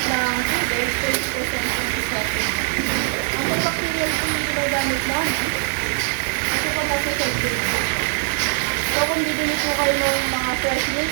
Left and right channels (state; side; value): silent; left; 64 dB below the other